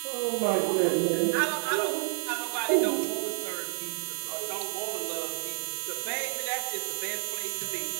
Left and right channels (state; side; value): silent; left; digital silence